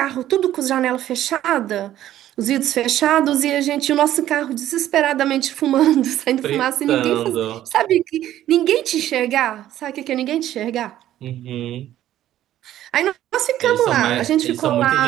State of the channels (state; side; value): quieter; left; 12.7 dB